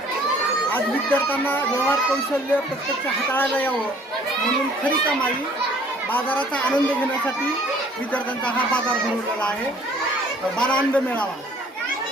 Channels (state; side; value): normal; both; correlation 0.56